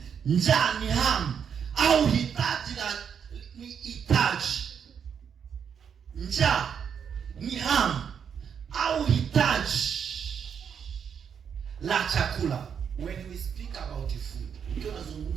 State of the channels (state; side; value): quieter; left; 7.5 dB